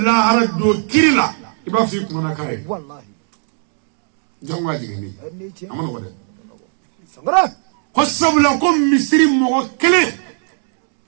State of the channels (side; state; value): left; silent; digital silence